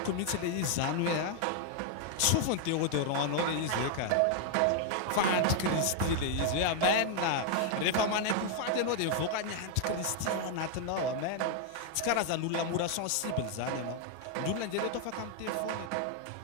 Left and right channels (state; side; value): different; both; correlation 0.00